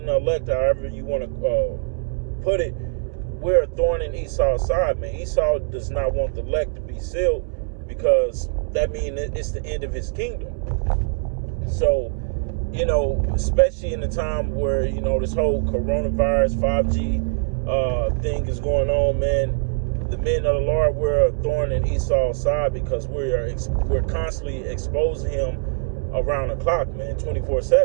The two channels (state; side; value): quieter; left; 38.6 dB